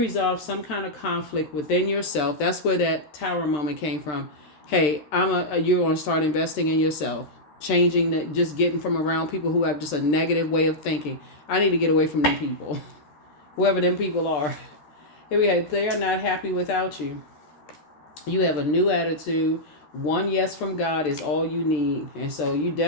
some kind of conflict within yourself. That's where that Tower moment came from. Hey, you're going to start investing in yourself. Changing that, just getting from around people who have just a negative way of thinking. I need to get away from them people. Whoever them people are. Here we have, they are not happy without you. You have a new attitude. One yes from God is all you need. And so you're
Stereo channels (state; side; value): late; right; 13 ms